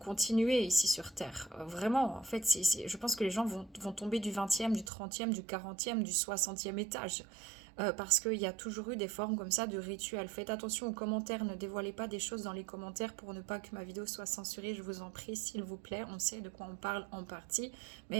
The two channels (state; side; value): drops out; left; at 4.9 s